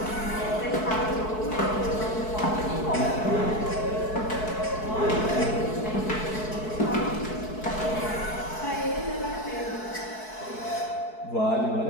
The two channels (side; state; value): right; late; 4.6 ms